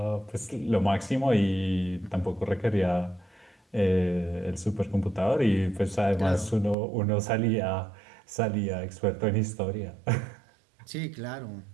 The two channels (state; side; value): drops out; left; at 6.8 s